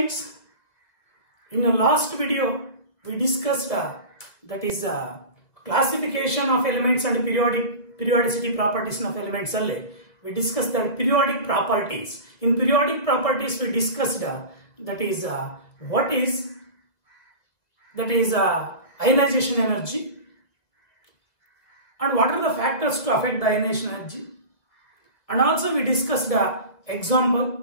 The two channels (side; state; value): right; late; 2.2 ms